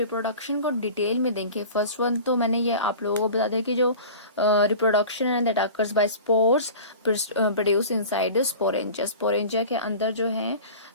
को डिटेल में देखें, फर्स्ट वन तो मैंने ये आप लोगों को बता दिया कि जो रिप्रोडक्शन है that occurs by spores produce inside the sporangia. Sporangia के अंदर जो है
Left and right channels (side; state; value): both; inverted; correlation -0.38